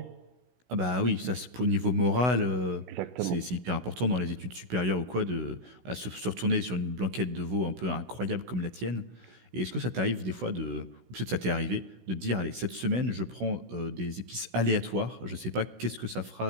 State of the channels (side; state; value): left; late; 16 ms